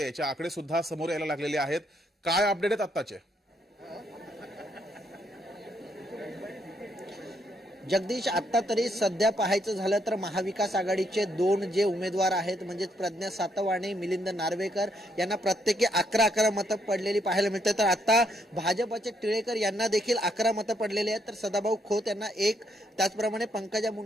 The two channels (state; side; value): normal; both; correlation 0.74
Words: याचे आकडे सुद्धा समोर यायला लागलेले आहेत. काय अपडेट आहेत आत्ताचे? जगदीश, आता तरी सध्या पाहायचं झालं तर महाविकास आघाडीचे दोन जे उमेदवार आहेत म्हणजे प्रज्ञा सातव, मिलिंद नार्वेकर यांना प्रत्येकी 11 मतं पडलेली पाहायला मिळते. तर आता भाजपचे टिळेकर यांना देखील 11 मतं पडलेली आहेत. तर सदाभाऊ खोत यांना 1, त्याचप्रमाणे पंकजा